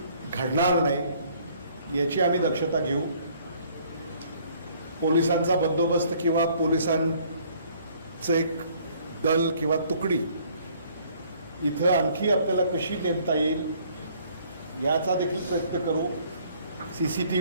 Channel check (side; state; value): both; inverted; correlation -0.60